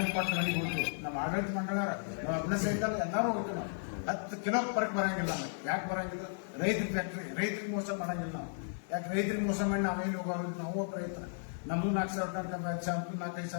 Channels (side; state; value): right; silent; digital silence